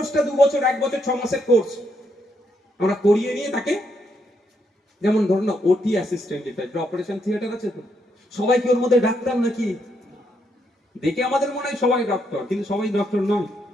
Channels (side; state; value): both; normal; correlation 0.77